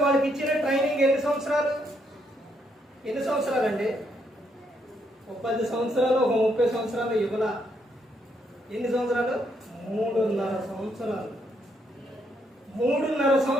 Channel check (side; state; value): both; normal; correlation 0.75